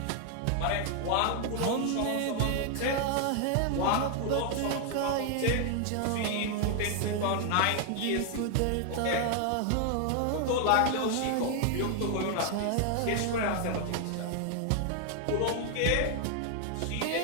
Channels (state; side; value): different; both; correlation 0.00